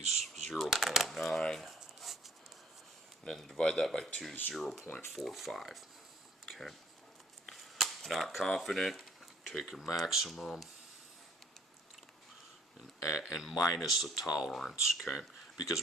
0.9, and then divide that by 2, 0.45, okay. Not confident, take your maximum and minus the tolerance, okay?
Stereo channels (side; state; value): both; normal; correlation 0.59